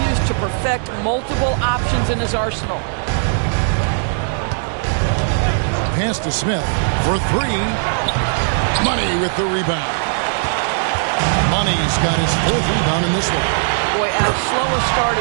to perfect multiple options in his arsenal. Pass to Smith for 3. Money with the rebound. Money's got his 4th rebound in this one. Boy, as slow a start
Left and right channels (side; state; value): left; silent; digital silence